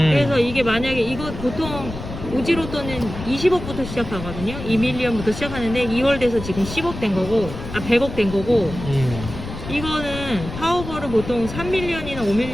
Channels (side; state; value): left; noise; rumble, 9 dB below the sound